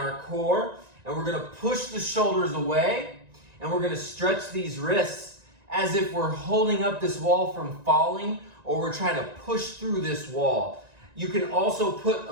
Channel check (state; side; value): late; left; 1.9 ms